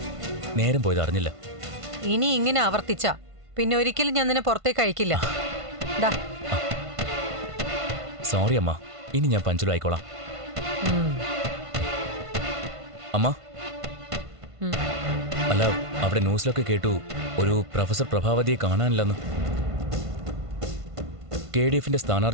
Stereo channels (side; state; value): left; late; 1.5 ms